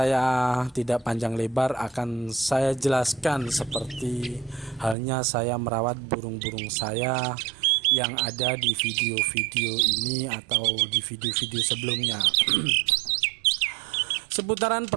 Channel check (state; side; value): drops out; left; at 5.0 s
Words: tidak panjang lebar, akan saya jelaskan seperti halnya saya merawat burung-burung saya yang ada di video-video ini atau di video-video sebelumnya. Seputaran